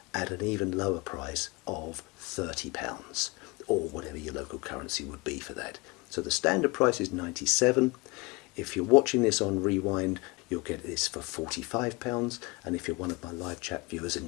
at an even lower price of £30, or whatever your local currency would be for that. So the standard price is £97. If you're watching this on Rewind, you'll get this for £45, and if you're one of my live chat viewers and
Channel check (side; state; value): right; quieter; 26.1 dB